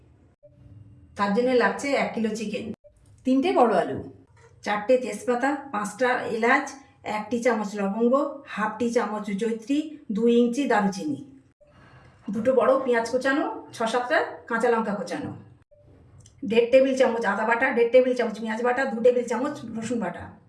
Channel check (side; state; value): both; identical; correlation 1.00